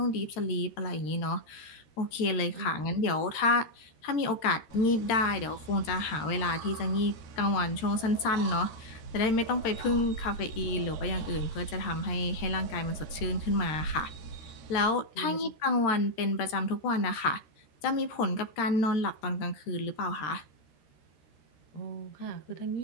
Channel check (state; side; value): late; right; 13 ms